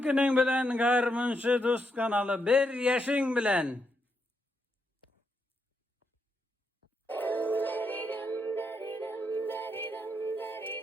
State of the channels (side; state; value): both; normal; correlation 0.80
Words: günün bilen Harmunçu Dost kanalı 1 yaşın bilen.